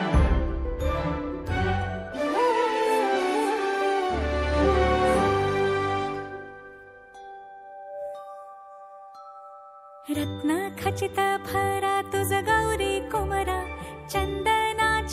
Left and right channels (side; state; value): both; identical; correlation 1.00